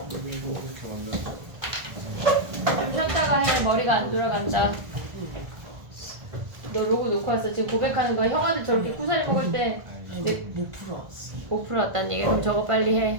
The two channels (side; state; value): left; late; 1.5 ms